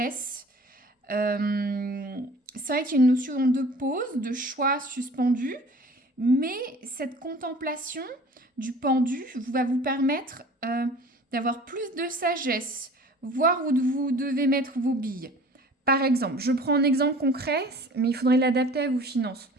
C'est vrai qu'il y a une notion de pause, de choix suspendu, mais cette contemplation du pendu va vous permettre d'avoir plus de sagesse, voir où vous devez mettre vos billes. Par exemple, je prends un exemple concret, mais il faudrait l'adapter à vos finances.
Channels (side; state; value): both; normal; correlation 0.46